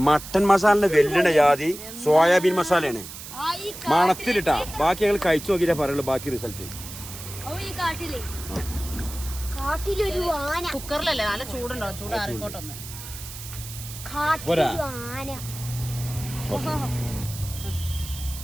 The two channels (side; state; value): right; noise; hiss, 12 dB below the sound